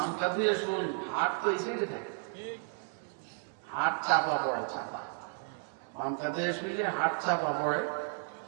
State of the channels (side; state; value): left; silent; 56 dB below the other